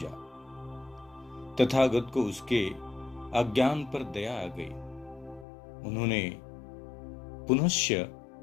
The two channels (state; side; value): drops out; right; at 5.5 s